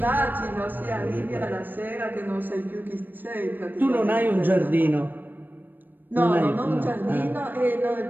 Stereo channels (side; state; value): left; late; 0.091 ms